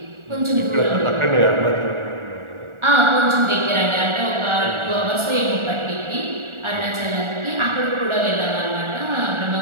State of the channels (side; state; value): left; late; 1.4 ms